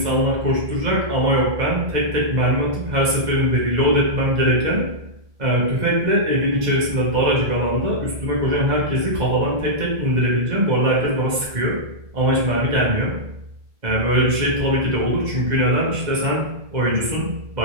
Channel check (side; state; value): left; late; 2.0 ms